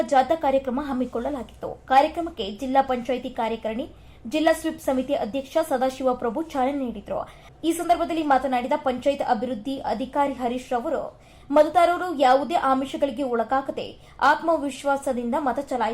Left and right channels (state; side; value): identical; both; correlation 1.00